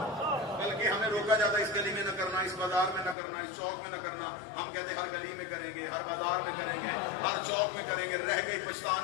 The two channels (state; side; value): drops out; right; at 3.2 s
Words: बल्कि हमें रोका जाता है इस गली में न करना, इस बाजार में न करना, इस चौक में न करना। हम कहते हर गली में करेंगे, हर बाजार में करेंगे, हर चौक में करेंगे। रह गई